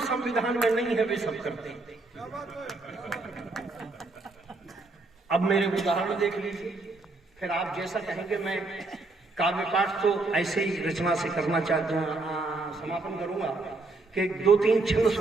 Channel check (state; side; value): quieter; left; 3.3 dB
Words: संविधान में नहीं है वे सब करते हैं। अब मेरे उदाहरण देख लीजिए, फिर आप जैसा कहेंगे। मैं काव्य पाठ तो ऐसे ही रचना से करना चाहता हूँ, समापन करूंगा कि 2-3 छंद